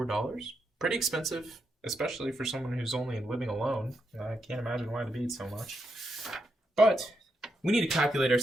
Pretty expensive, especially for someone who's only living alone. I can't imagine why they be so much. But we need to calculate our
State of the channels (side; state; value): both; normal; correlation 0.82